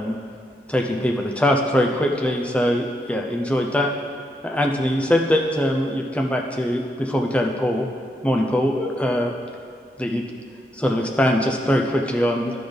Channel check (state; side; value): normal; both; correlation 0.80